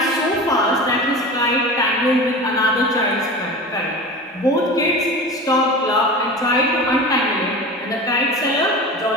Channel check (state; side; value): normal; both; correlation 0.32